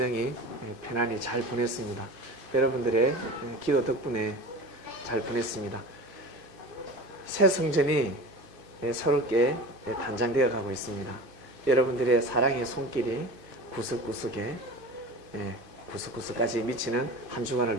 편안히 잘 보냈습니다. 여러분들의 기도 덕분에 잘 보냈습니다. 새 성전이 새롭게 단장되어 가고 있습니다. 여러분들의 사랑의 손길이 구석구석까지 미치는 한 주간을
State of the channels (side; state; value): left; late; 2.5 ms